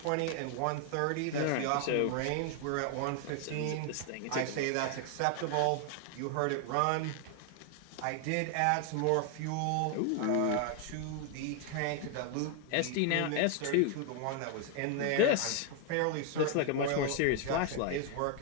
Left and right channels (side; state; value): both; different; correlation 0.00